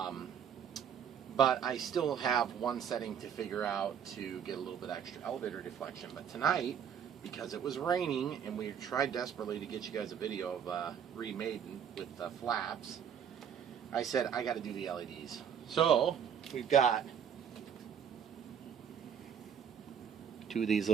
But I still have one setting to figure out to get a little bit extra elevator deflection. But tonight, because it was raining and we tried desperately to get you guys a video of remade with the flaps, I said I got to do the LEDs. So we've got two of these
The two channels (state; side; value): quieter; left; 8.1 dB